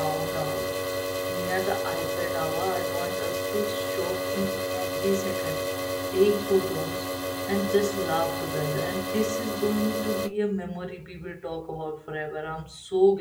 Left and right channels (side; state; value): both; identical; correlation 1.00